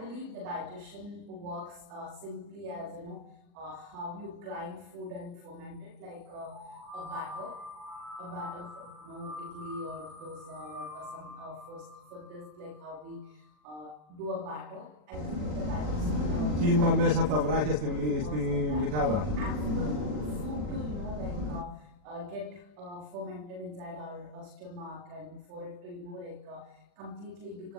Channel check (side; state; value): left; late; 40 ms